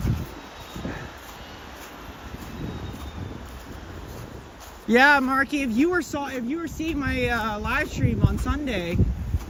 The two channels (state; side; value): identical; both; correlation 1.00